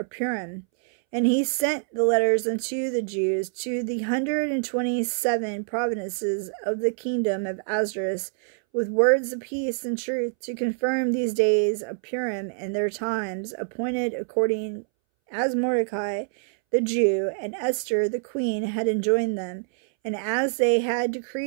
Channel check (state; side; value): silent; left; 61 dB below the other